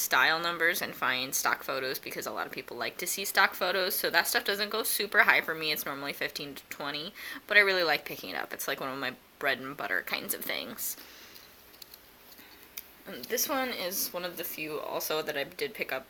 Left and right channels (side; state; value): both; identical; correlation 1.00